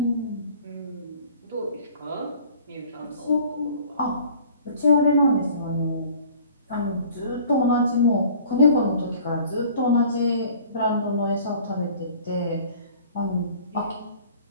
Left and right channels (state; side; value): inverted; both; correlation -0.50